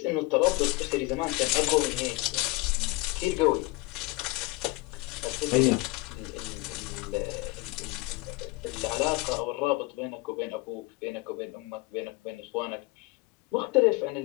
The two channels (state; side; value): quieter; right; 22.9 dB